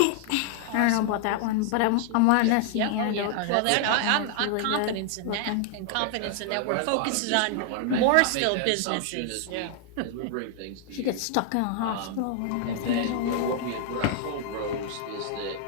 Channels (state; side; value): different; both; correlation 0.00